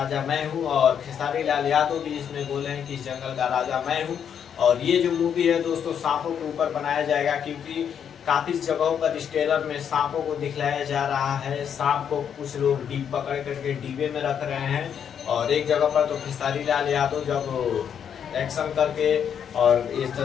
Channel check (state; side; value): quieter; right; 8.2 dB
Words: मैं हूँ, और खेसारी लाल यादव भी इसमें बोले हैं कि इस जंगल का राजा मैं हूँ। और ये जो मूवी है दोस्तों सांपों के ऊपर बनाया जाएगा, क्योंकि काफी जगहों पर इस ट्रेलर में सांपों को दिखलाया जा रहा है। सांप को कुछ लोग डीप पकड़ करके डिब्बे में रख रहे हैं, और एक जगह पर तो खेसारी लाल यादव जब एक्शन करके और इस